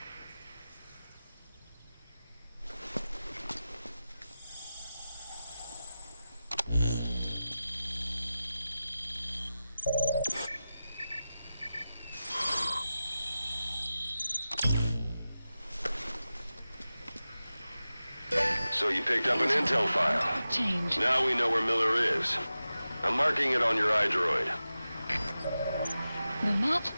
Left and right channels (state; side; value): inverted; both; correlation -0.94